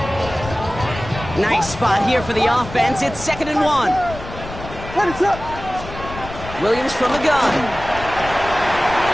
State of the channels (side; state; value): left; noise; rumble, 12 dB below the sound